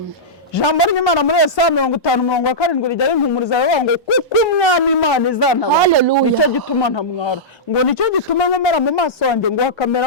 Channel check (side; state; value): both; normal; correlation -0.12